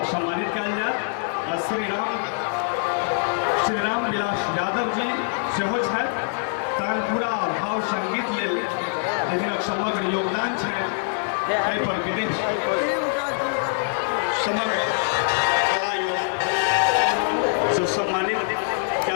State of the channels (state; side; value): silent; right; 62 dB below the other